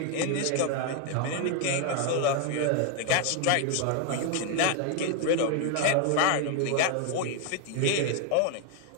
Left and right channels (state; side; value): different; both; correlation 0.00